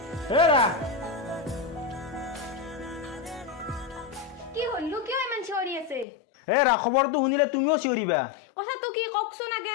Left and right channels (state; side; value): drops out; right; at 6.1 s